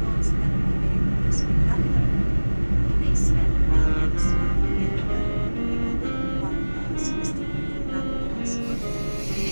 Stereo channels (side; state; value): both; inverted; correlation -1.00